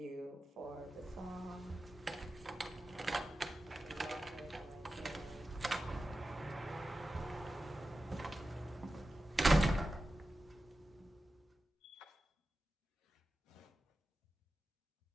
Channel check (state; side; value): normal; both; correlation 0.93